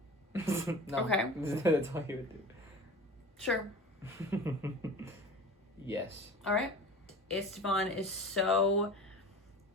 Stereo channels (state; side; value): normal; both; correlation 0.37